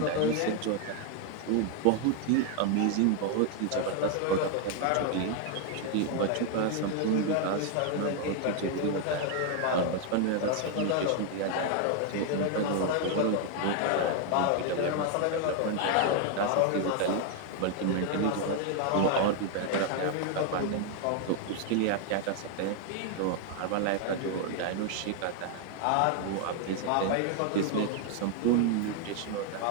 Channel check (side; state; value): both; different; correlation 0.00